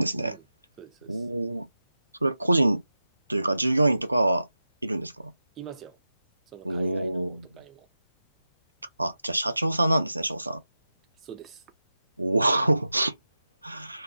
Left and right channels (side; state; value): both; inverted; correlation -0.94